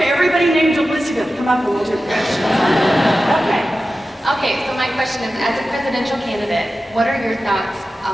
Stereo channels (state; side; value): normal; both; correlation 0.93